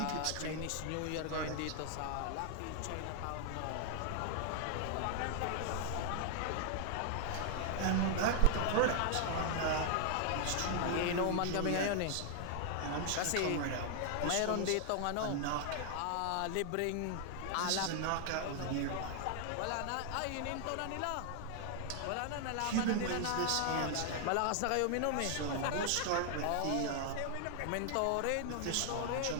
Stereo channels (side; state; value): both; different; correlation 0.00